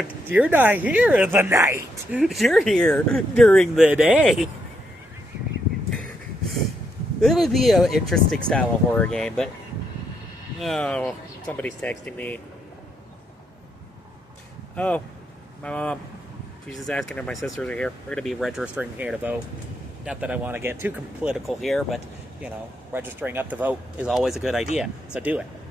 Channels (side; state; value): both; normal; correlation 0.78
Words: you're not here at the night. You're here during the day. It would be an interesting style of horror game, but... Oh, somebody's texting me. Oh, my mom. She's just asking if my sisters are here. We're going to be registering here to vote. Not that I want to get too political here, but, registering up to vote is always a good idea. So do it.